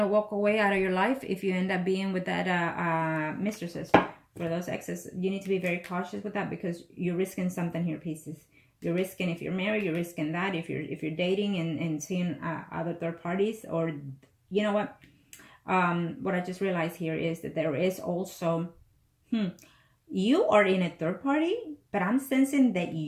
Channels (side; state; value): both; identical; correlation 1.00